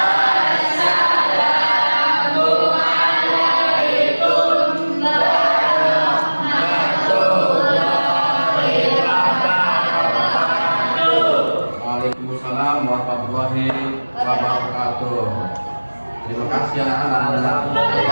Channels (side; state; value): both; inverted; correlation -1.00